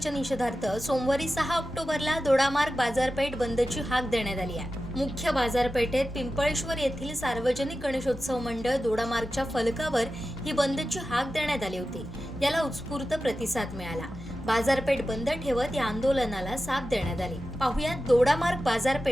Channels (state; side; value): normal; both; correlation 0.93